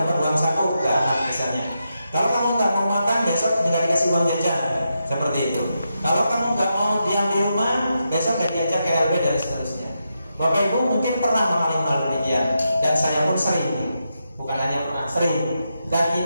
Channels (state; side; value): inverted; both; correlation -0.85